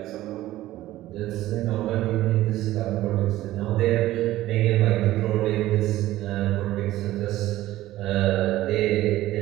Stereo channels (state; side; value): quieter; left; 15.5 dB